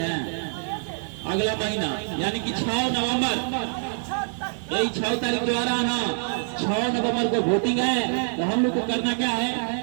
हैं? अगला महीना यानी कि 6 नवंबर, यही 6 तारीख को आ रहा है ना, 6 नवंबर को वोटिंग है। तो हम लोग को करना क्या है,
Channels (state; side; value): silent; left; digital silence